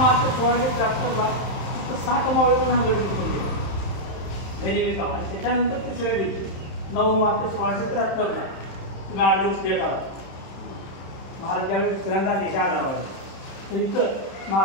1673 फक्त 7 मावळ्यांना हा गड जिंकून गेले गनिमी काम. आणि त्याच्यानंतर तिसऱ्या दिवशी 9 मार्च 1673 8 दिवस भेट आला. महाराज ज्यावेळी दुसऱ्यांदा देशा आधारवाजे तर इथं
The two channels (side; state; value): right; late; 31 ms